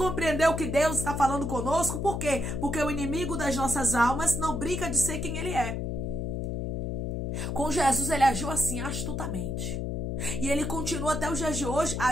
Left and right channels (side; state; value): left; noise; hum, 2 dB below the sound